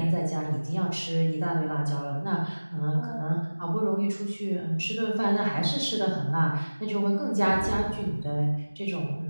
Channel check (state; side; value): inverted; both; correlation -1.00